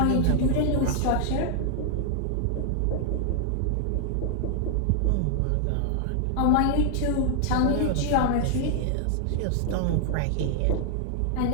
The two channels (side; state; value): both; different; correlation -0.01